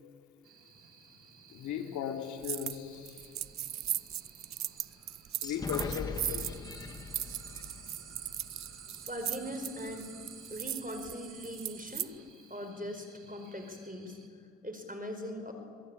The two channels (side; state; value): both; normal; correlation 0.31